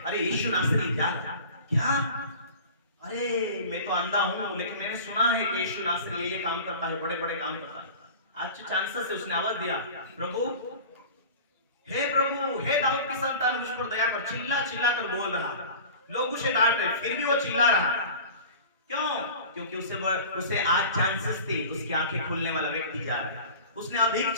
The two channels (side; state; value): both; inverted; correlation -0.39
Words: अरे यीशु नासरी क्या? अरे मैं तो अंधा हूं, लेकिन मैंने सुना है कि यीशु नासरी ये काम करता है, बड़े बड़े काम करता है। आज चांसेस से उसने आवाज दिया, प्रभु, हे दाऊद की संतान मुझ पर दया कर। चिल्ला चिल्ला कर बोल रहा, लोग उसे डांट रहे, फिर भी वो चिल्ला रहा। क्यों? क्योंकि उसे आज चांसेस थी, उसकी आंखें खुलने वाला व्यक्ति जा रहा है। उसने अधिक